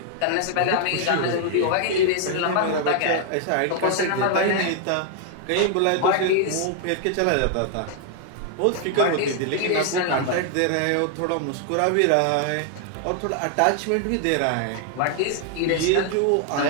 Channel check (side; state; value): both; different; correlation 0.00